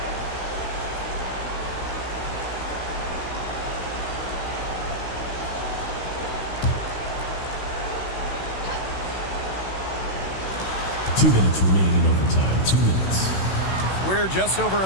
Two minutes remaining in overtime. 2 minutes. We're just over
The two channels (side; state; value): right; late; 16 ms